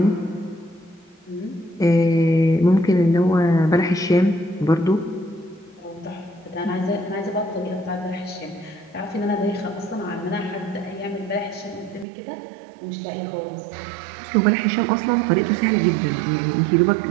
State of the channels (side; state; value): left; drops out; at 12.1 s